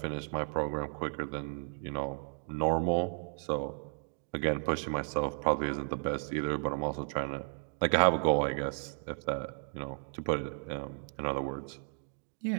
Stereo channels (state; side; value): silent; left; 55 dB below the other